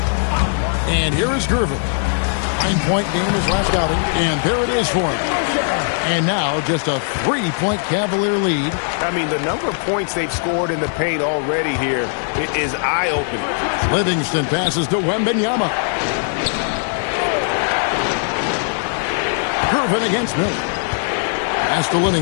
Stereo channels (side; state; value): right; silent; digital silence